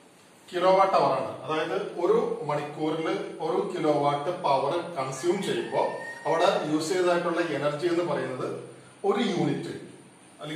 കിലോ വാട്ട് അവർ ആണ്. അതായത് ഒരു മണിക്കൂറിൽ 1 കിലോ വാട്ട് പവർ കൺസ്യൂം ചെയ്യുമ്പോൾ അവിടെ യൂസ് ചെയ്തതായിട്ടുള്ള എനർജി എന്ന് പറയുന്നത് ഒരു യൂണിറ്റ്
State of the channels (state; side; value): identical; both; correlation 1.00